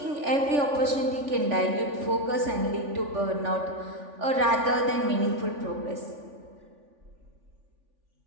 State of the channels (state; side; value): late; left; 3.5 ms